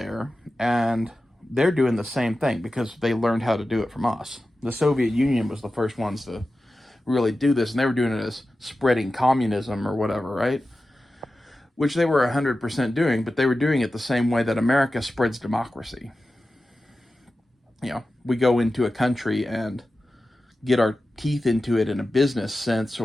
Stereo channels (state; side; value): normal; both; correlation 0.94